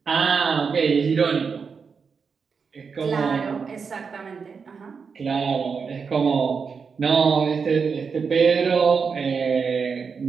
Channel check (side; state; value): left; quieter; 5.6 dB